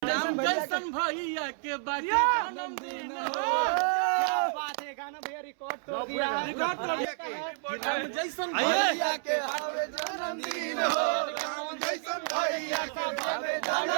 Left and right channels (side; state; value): left; silent; 58 dB below the other